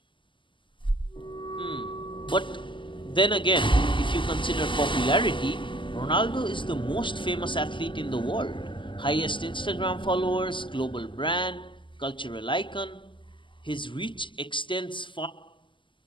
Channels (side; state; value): right; late; 0.24 ms